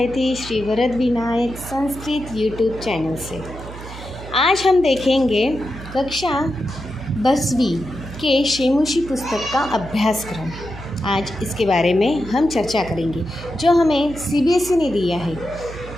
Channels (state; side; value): noise; right; hum, 13 dB below the sound